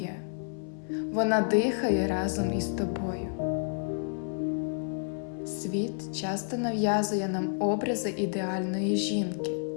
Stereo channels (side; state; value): right; silent; 58 dB below the other